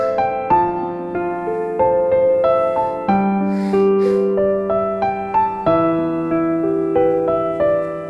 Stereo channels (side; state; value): both; identical; correlation 1.00